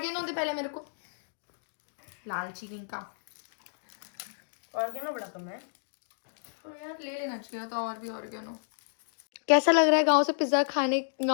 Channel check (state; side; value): silent; right; digital silence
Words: दे पहले मेरे को। लालची का ऑर्गेनो बड़ा कम है तो यार ले लेना चाहिए था और भी ऑर्गेनो। कैसा लग रहा है गांव से पिज्जा खाने,